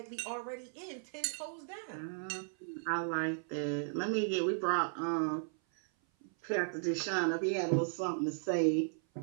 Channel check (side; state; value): left; silent; 54 dB below the other